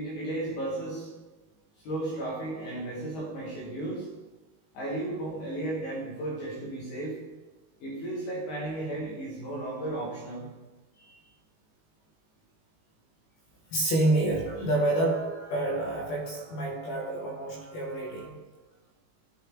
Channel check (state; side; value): late; right; 19 ms